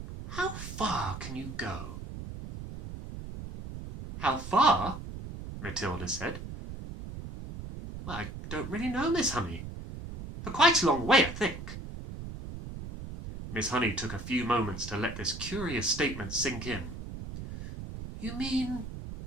How far can you go? How far? Matilda said. Well, I don't really know, Miss Honey. For quite a long way, I think. Miss Honey took a few moments to let this curious statement sink in. You mean,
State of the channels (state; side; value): noise; right; rumble, 9 dB below the sound